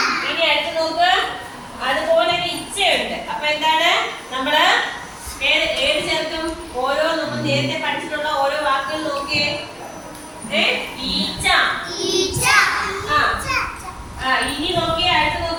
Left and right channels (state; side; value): identical; both; correlation 1.00